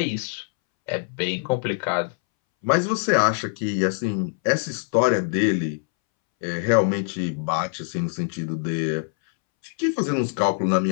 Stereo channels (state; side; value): silent; right; 63 dB below the other